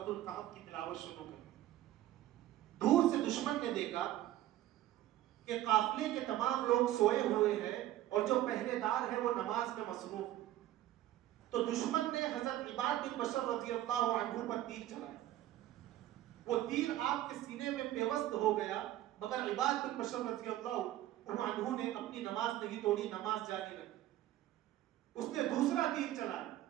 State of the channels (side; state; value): left; quieter; 14.0 dB